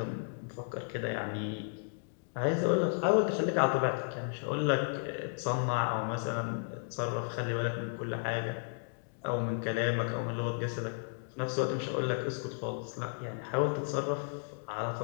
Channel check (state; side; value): silent; right; digital silence